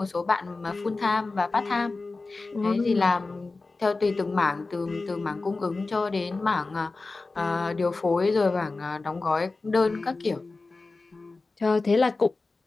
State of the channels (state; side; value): quieter; right; 3.6 dB